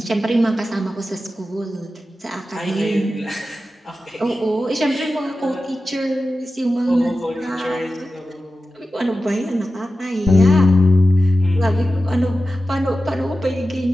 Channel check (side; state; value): both; normal; correlation 0.93